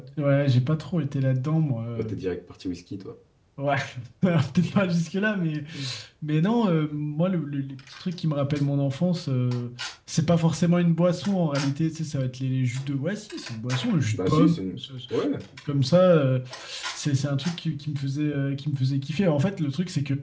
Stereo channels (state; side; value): identical; both; correlation 1.00